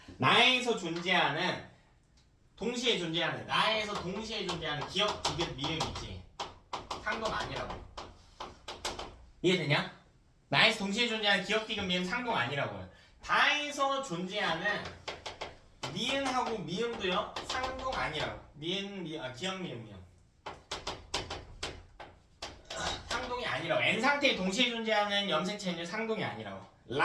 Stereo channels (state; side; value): identical; both; correlation 1.00